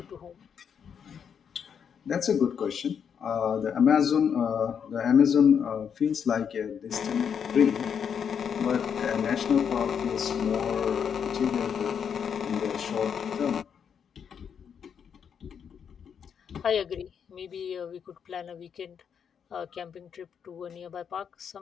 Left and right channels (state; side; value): quieter; right; 7.4 dB